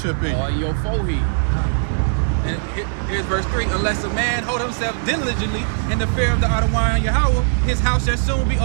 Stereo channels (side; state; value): left; silent; digital silence